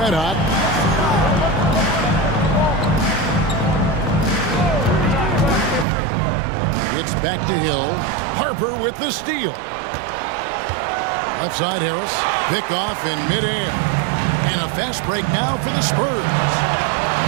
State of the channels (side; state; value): left; drops out; at 5.9 s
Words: Hot. It's back to Hill. Harper with the steal. Left side Harris. Pick off in midair. And a fast break now for the Spurs.